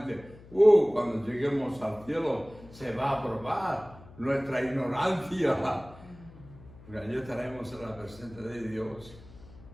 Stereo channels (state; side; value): noise; left; hum, 20 dB below the sound